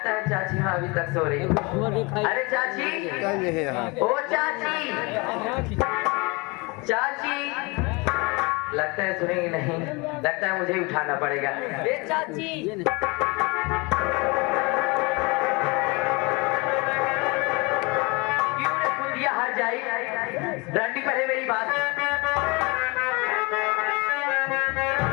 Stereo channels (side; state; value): right; quieter; 27.4 dB